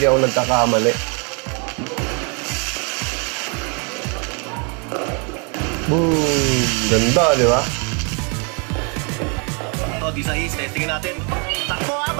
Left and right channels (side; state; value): left; quieter; 35.7 dB